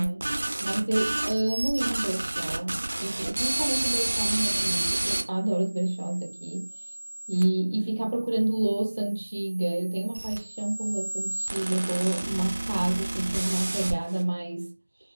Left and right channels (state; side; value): inverted; both; correlation -1.00